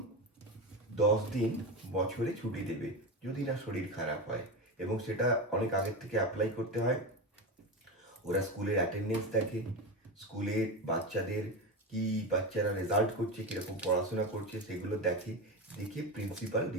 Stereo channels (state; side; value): normal; both; correlation 0.19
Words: 10 দিন বছরে ছুটি দেবে, যদি না শরীর খারাপ হয়, এবং সেটা অনেক আগের থেকে অ্যাপ্লাই করতে হয়। ওরা স্কুলের অ্যাটেন্ডেন্স দেখে, স্কুলের বাচ্চাদের কি, বাচ্চারা রেজাল্ট করছে, কীরকম পড়াশোনা করছে, সেগুলো দেখে, দেখে প্রিন্সিপাল